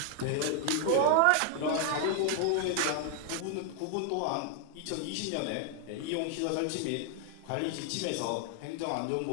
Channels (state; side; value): different; both; correlation 0.00